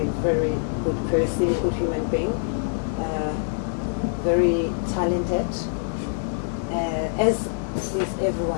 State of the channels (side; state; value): right; silent; 62 dB below the other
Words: very good person, good human being. Very talented, as is